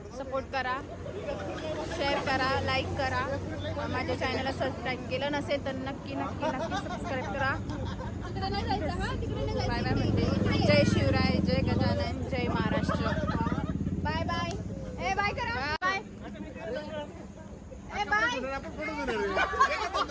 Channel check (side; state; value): both; identical; correlation 1.00